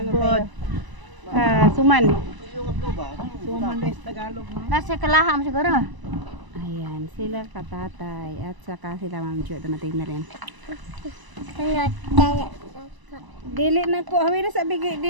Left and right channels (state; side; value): late; left; 1.0 ms